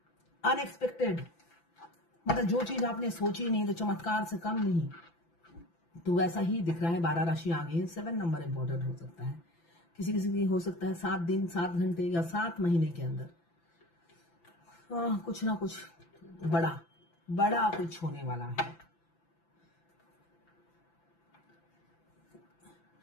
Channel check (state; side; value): late; right; 5.9 ms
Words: अनएक्सपेक्टेड, मतलब जो चीज आपने सोची नहीं तो चमत्कार से कम नहीं। तो वैसा ही दिख रहा है। 12 राशि आ गई है। 7 नंबर इंपॉर्टेंट हो सकता है, किसी किसी की हो सकता है 7 दिन 7 घंटे या 7 महीने के अंदर कुछ ना कुछ बड़ा कुछ होने वाला है।